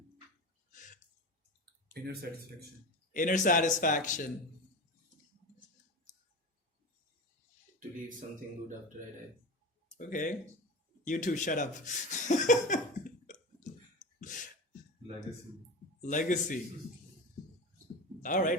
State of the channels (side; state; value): both; normal; correlation 0.27